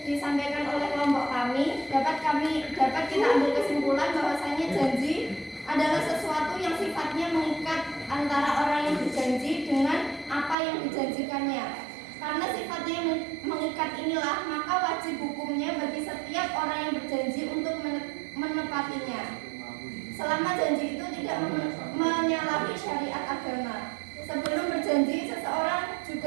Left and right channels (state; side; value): drops out; left; at 10.6 s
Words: disampaikan oleh kelompok kami, dapat kita ambil kesimpulan bahwasanya janji adalah sesuatu yang sifatnya mengikat antara orang yang berjanji dengan apa yang dijanjikannya. Karena sifatnya mengikat inilah, maka wajib hukumnya bagi setiap orang yang berjanji untuk menepatinya. Selama janji itu tidak menyalahi syariat agama. Sebelum berjanji, seseorang